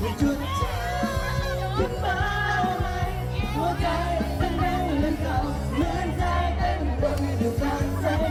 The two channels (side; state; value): both; identical; correlation 1.00